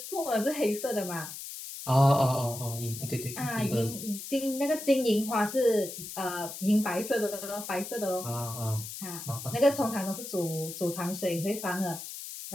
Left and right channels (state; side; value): noise; left; hiss, 9 dB below the sound